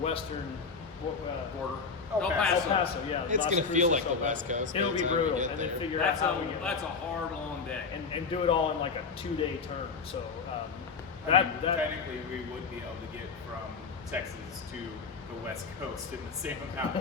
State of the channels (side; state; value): right; quieter; 5.0 dB